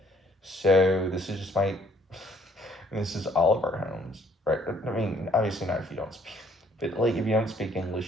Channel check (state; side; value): normal; both; correlation 0.63